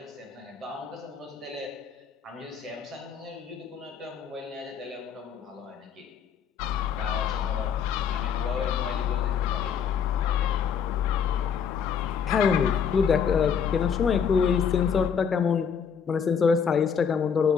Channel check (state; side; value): quieter; right; 7.1 dB